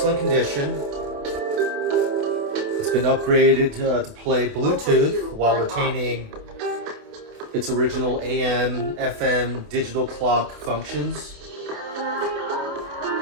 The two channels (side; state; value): left; late; 28 ms